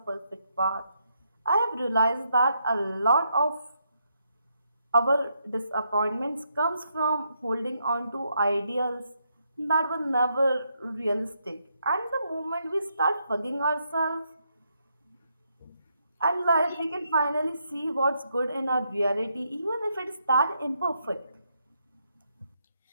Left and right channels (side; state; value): both; inverted; correlation -0.78